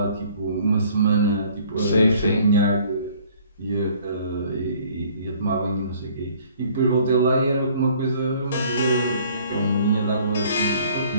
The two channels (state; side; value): inverted; both; correlation -0.56